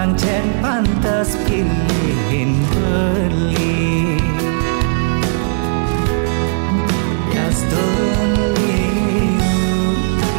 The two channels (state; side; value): silent; left; digital silence